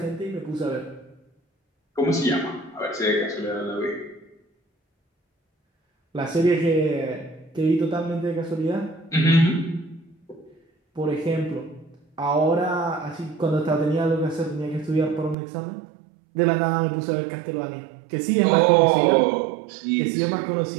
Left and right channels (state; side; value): drops out; left; at 15.4 s